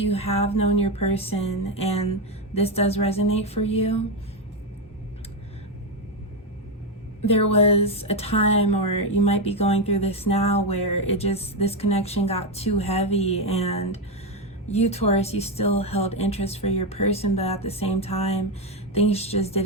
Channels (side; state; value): both; normal; correlation 0.07